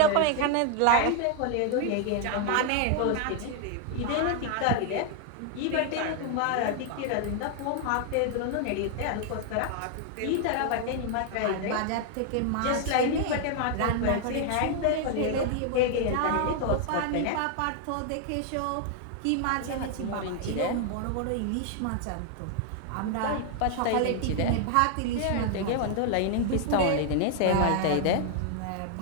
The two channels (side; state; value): both; different; correlation 0.00